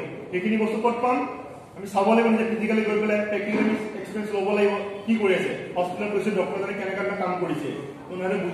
এইখিনি বস্তু কত পাম আমি চাব লাগিব যে ফিজিক্যালি গৈ পেলাই প্ৰ্যাকটিক্যালি এক্সপেৰিয়েন্স ল'ব লাগিব কি কৰি আছে হস্পিটেলত গৈছে ডক্টৰজনে কেনেকৈ কাম কৰিছে কোনোবাৰে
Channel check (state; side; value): identical; both; correlation 1.00